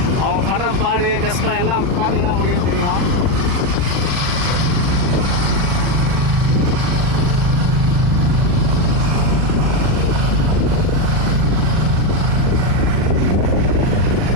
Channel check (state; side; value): late; left; 40 ms